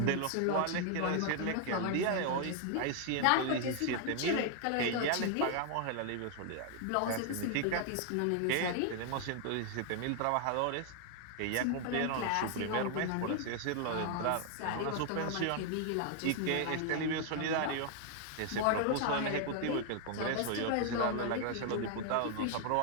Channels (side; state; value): both; different; correlation 0.00